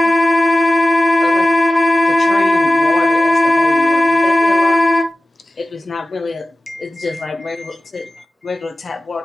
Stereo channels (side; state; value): both; normal; correlation 0.95